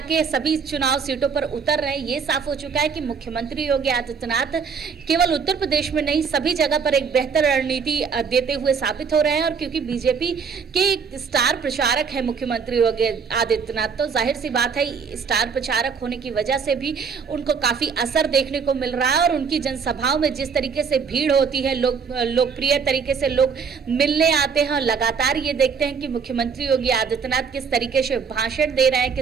सभी चुनाव सीटों पर उतर रहे हैं, ये साफ हो चुका है कि मुख्यमंत्री योगी आदित्यनाथ केवल उत्तर प्रदेश में नहीं सभी जगह पर एक बेहतर रणनीति देते हुए साबित हो रहे हैं। और क्योंकि बीजेपी के स्टार प्रचारक है मुख्यमंत्री योगी आदित्यनाथ, तो जाहिर सी बात है स्टार प्रचारक होने की वजह से भी उनको काफी असर देखने को मिल रहा है। और उनकी जनसभाओं में जिस तरीके से भीड़ होती है, लोकप्रिय तरीके से लोग मिलने आते हैं, लगातार ये देखते हैं कि मुख्यमंत्री योगी आदित्यनाथ किस तरीके से भाषण दे रहे हैं,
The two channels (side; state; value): left; quieter; 5.9 dB